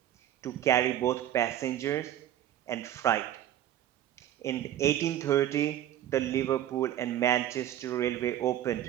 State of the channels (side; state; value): left; quieter; 11.9 dB